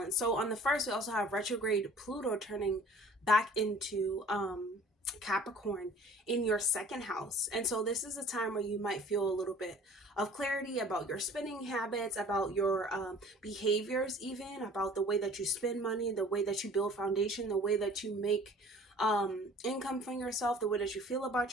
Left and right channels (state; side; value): normal; both; correlation 0.49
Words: So on the 1st, we also have retrograde Pluto turning back into Capricorn in your 2nd house. And so this is a time where you might feel a little bit of clarity about your spending habits, about your behaviors, even about the way that you spend money, the way that you build foundation, the way that you make income from yourself, the way that you feel about